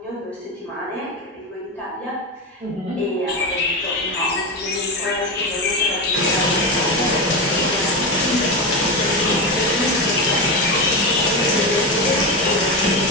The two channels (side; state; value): both; normal; correlation 0.16